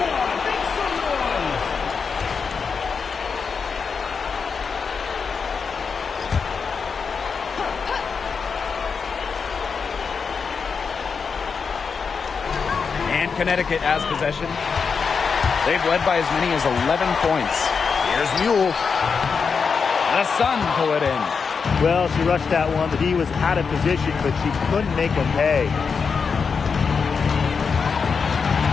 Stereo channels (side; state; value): right; quieter; 5.6 dB